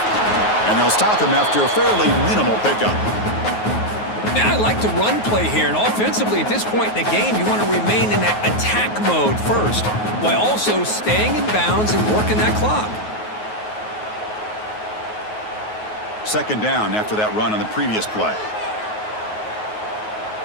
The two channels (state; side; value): late; right; 9.4 ms